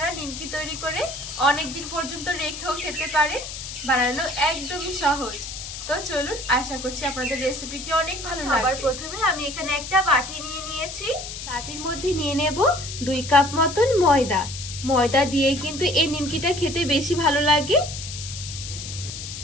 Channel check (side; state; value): left; noise; hiss, 9 dB below the sound